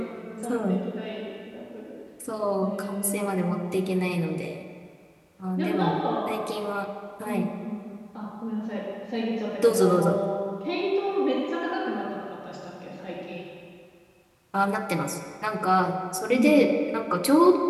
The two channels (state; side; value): identical; both; correlation 1.00